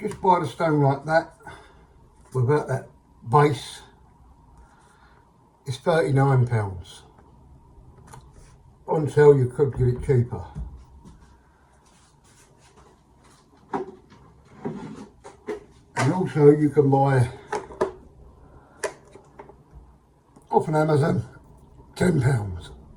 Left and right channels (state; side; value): identical; both; correlation 1.00